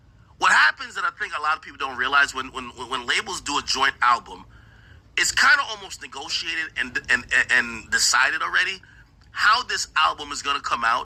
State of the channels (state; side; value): identical; both; correlation 1.00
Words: What happens that I think a lot of people don't realize when labels do a joint album, it's kind of almost negotiated and decided already how this album is going to come